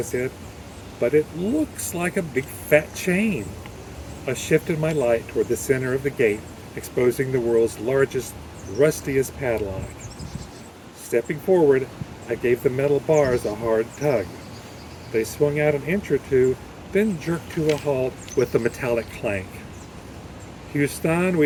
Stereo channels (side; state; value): both; identical; correlation 1.00